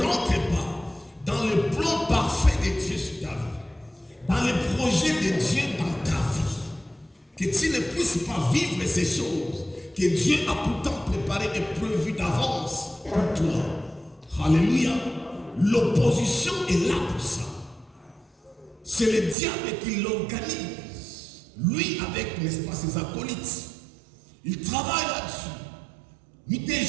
rentres pas dans le plan parfait de Dieu sur ta vie. Dans le projet de Dieu dans ta vie. Que tu ne puisses pas vivre ces choses que Dieu a pourtant préparées et prévues d'avance pour toi. Alléluia. L'opposition est là pour ça. C'est le diable qui l'organise. Lui avec, n'est-ce pas, ses acolytes. Il travaille là-dessus. Nuit et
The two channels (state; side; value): drops out; left; at 19.4 s